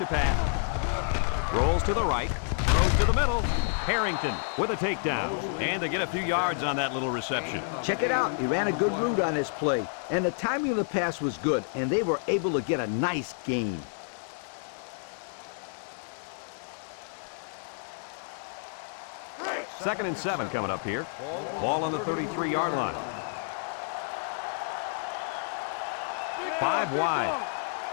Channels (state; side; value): silent; right; digital silence